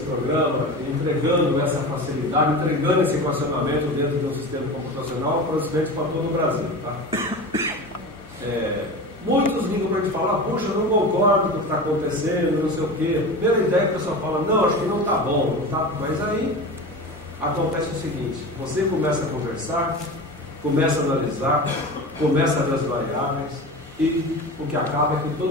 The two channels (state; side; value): normal; both; correlation 0.30